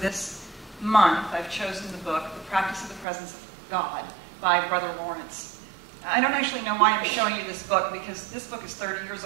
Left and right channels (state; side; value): drops out; left; at 3.1 s